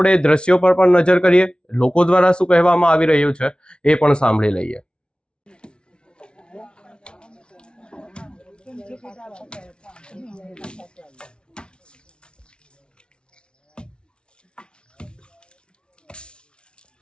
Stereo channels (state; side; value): late; right; 0.056 ms